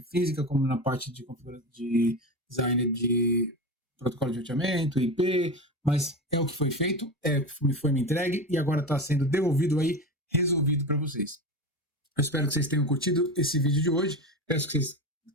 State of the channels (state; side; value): normal; both; correlation 0.23